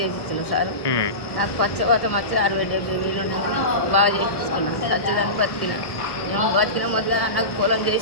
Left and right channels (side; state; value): right; late; 1.1 ms